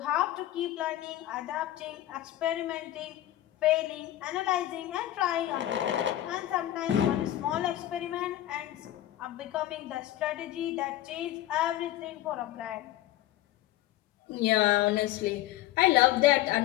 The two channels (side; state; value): right; quieter; 14.1 dB